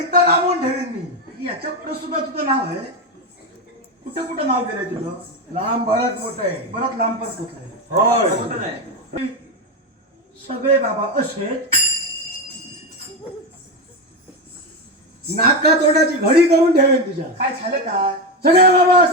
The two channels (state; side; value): normal; both; correlation 0.13